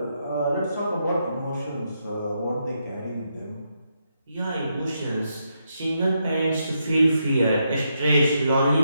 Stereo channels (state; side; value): inverted; both; correlation -0.81